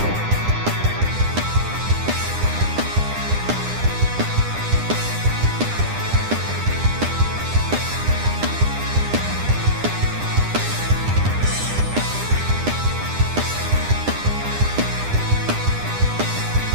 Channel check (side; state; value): left; late; 9.9 ms